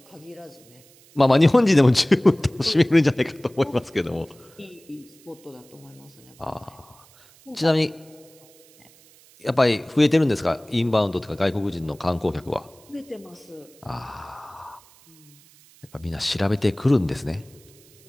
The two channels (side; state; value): right; noise; hiss, 27 dB below the sound